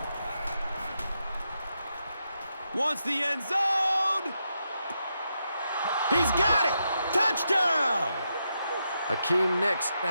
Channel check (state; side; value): inverted; both; correlation -0.84